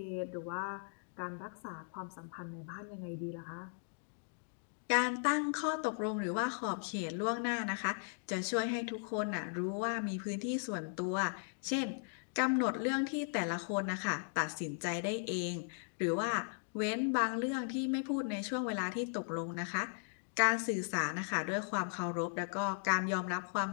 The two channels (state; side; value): silent; right; digital silence